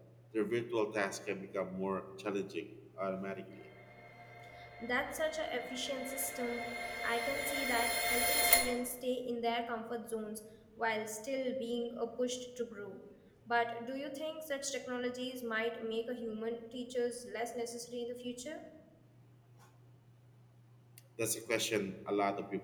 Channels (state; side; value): identical; both; correlation 1.00